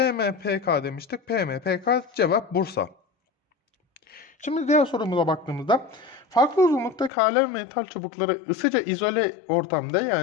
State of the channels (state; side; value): drops out; right; at 7.1 s